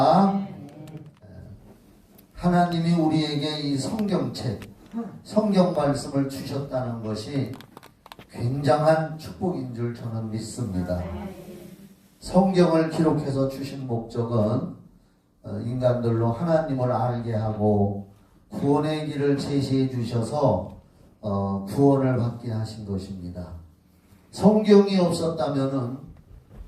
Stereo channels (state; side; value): identical; both; correlation 1.00